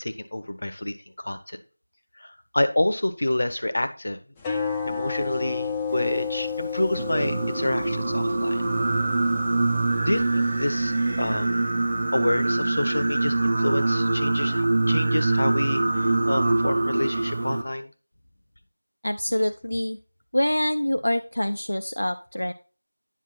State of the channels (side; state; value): both; inverted; correlation -0.95